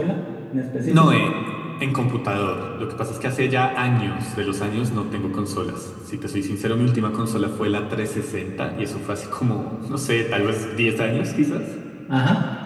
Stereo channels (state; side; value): identical; both; correlation 1.00